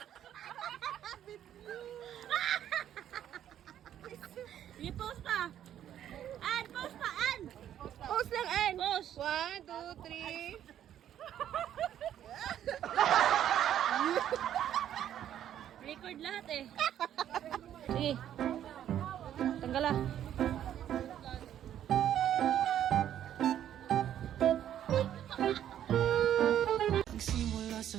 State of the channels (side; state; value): left; quieter; 10.7 dB